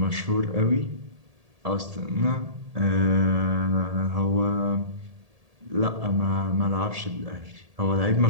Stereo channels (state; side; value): late; left; 1.8 ms